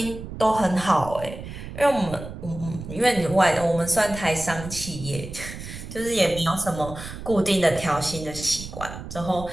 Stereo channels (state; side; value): noise; right; rumble, 11 dB below the sound